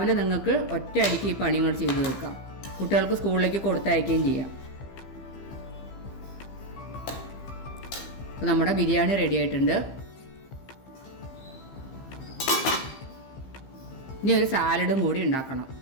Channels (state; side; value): late; right; 15 ms